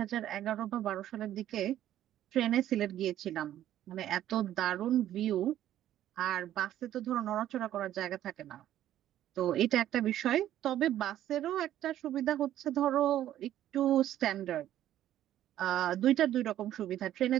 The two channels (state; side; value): quieter; left; 12.2 dB